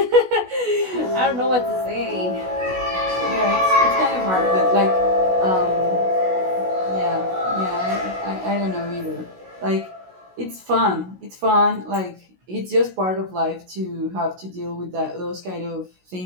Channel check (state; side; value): late; left; 16 ms